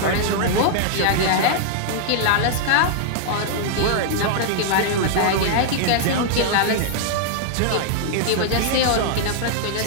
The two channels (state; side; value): different; both; correlation 0.00